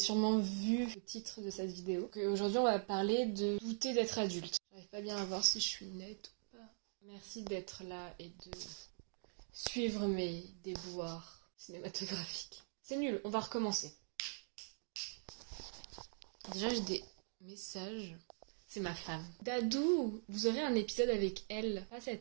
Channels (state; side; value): silent; left; digital silence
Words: vu le titre de cette vidéo. Aujourd'hui, on va parler de douter d'être adulte. J'arrive pas bien à voir si je suis nette ou pas. Merci d'être là et de suivre mes déboires cinématographiques. C'est nul, on va recommencer. Déjà, j'ai des messages. C'est ma femme. Dadou, vous aurez un épisode avec elle, pas